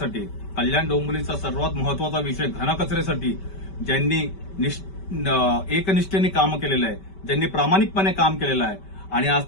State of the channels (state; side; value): late; right; 5.2 ms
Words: कल्याण डोंबिवलीचा सर्वात महत्वाचा विषय घनकचऱ्यासाठी ज्यांनी एकनिष्ठेने काम केलेलं आहे, ज्यांनी प्रामाणिकपणे काम केलेलं आहे आणि आज